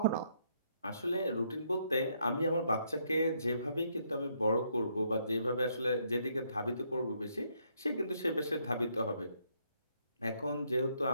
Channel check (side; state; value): both; inverted; correlation -0.73